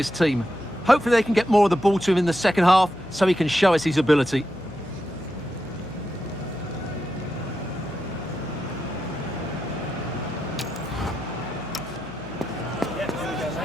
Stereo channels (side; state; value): left; noise; hum, 18 dB below the sound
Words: team. Hopefully they can get more of the ball to him in the second half, so he can show us his ability.